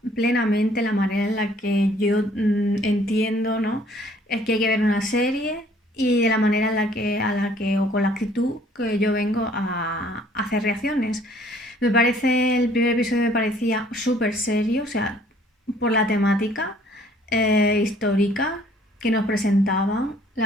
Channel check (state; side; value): normal; both; correlation 0.58